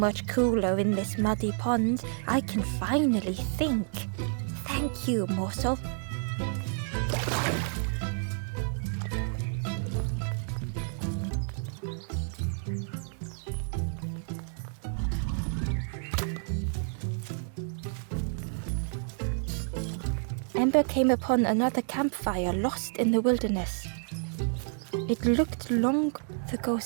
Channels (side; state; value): left; silent; 58 dB below the other